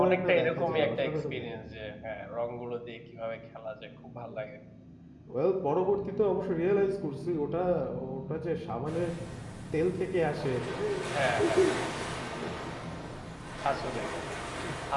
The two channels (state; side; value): identical; both; correlation 1.00